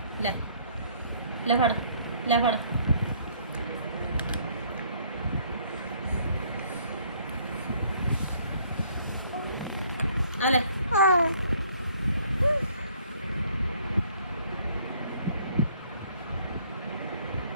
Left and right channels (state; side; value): inverted; both; correlation -0.61